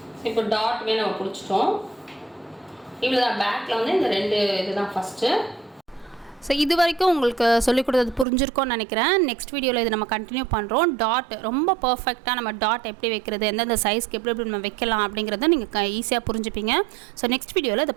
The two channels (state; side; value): drops out; left; at 8.2 s